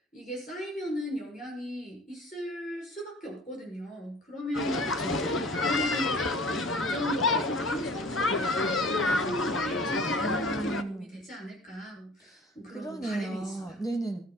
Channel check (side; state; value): both; normal; correlation 0.47